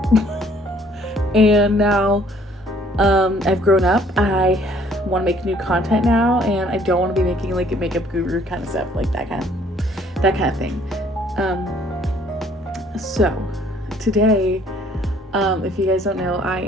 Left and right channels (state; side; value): normal; both; correlation 0.60